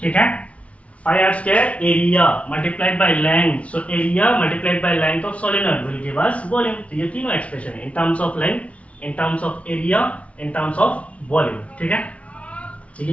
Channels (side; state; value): right; late; 0.064 ms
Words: ठीक है, pi r square area multiplied by length. So area multiplied by length of solenoid will give us volume. तो ये तीनों एक्सप्रेशन है in terms of length, in terms of area, in terms of volume, ठीक है. तो ये